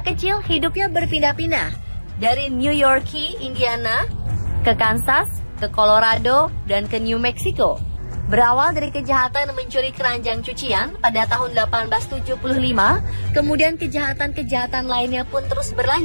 kecil hidupnya berpindah-pindah dari New York, Indiana, ke Kansas, ke Colorado, dan ke New Mexico. Berawal dari kejahatan mencuri keranjang cucian pada tahun 1875, kemudian kejahatan-kejahatan lainnya pun terus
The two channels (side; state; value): both; inverted; correlation -1.00